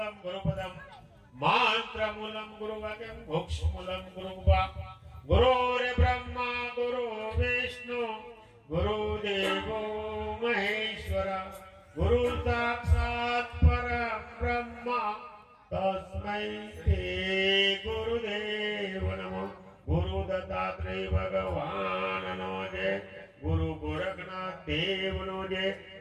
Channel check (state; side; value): identical; both; correlation 1.00